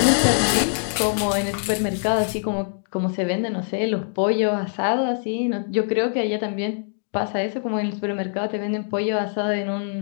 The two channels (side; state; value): right; silent; digital silence